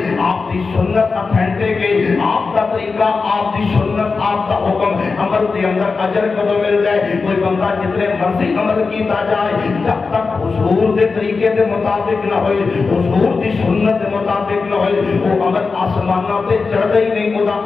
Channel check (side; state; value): right; quieter; 4.5 dB